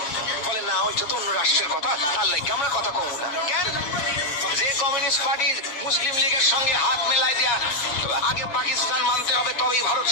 বলে না ওইটা তো অন্য রাষ্ট্রের কথা, তার লাগে আমরা কথা কম না। কেন? যে কমিউনিস্ট পার্টি মুসলিম লীগের সঙ্গে হাত মেলায় দেয়া আগে পাকিস্তান মানতে হবে তবেই ভারত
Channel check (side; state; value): right; late; 7.3 ms